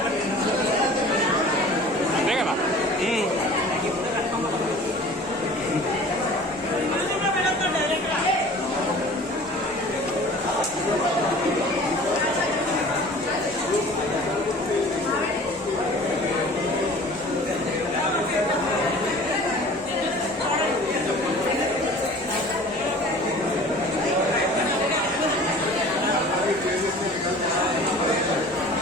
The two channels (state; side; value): normal; both; correlation 0.44